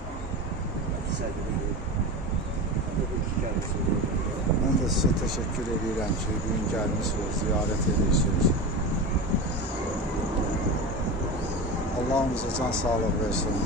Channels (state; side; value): normal; both; correlation 0.25